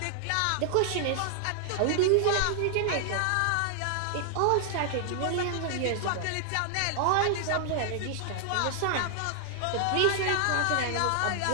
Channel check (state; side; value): different; both; correlation 0.00